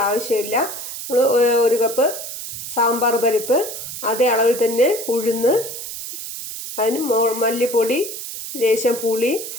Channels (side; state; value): right; noise; hiss, 8 dB below the sound